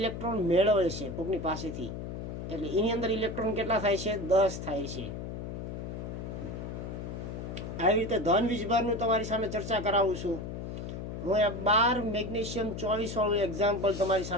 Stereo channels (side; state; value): left; noise; hum, 7 dB below the sound